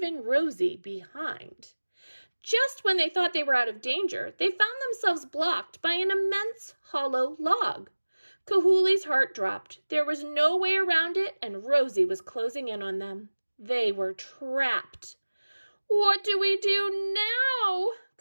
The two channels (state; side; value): inverted; both; correlation -1.00